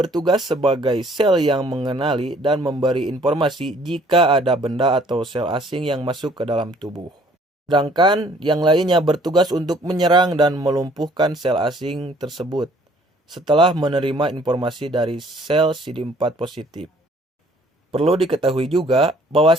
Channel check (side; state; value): both; normal; correlation 0.59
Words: sebagai sel yang mengenali dan memberi informasi jika ada benda atau sel asing yang masuk ke dalam tubuh. Sedangkan yang lainnya bertugas untuk menyerang dan melumpuhkan sel asing tersebut setelah menerima informasi dari sel CD4 positif. Perlu diketahui juga